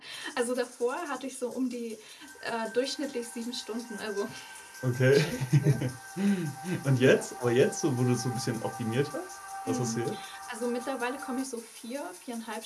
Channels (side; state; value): both; identical; correlation 1.00